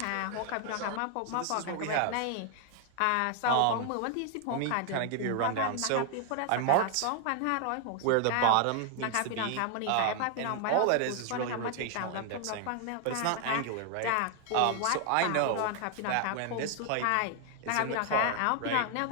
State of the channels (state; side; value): different; both; correlation 0.00